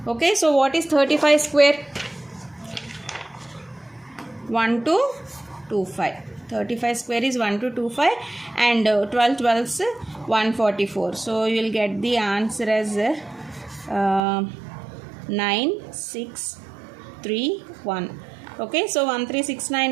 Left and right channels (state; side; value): drops out; left; at 14.2 s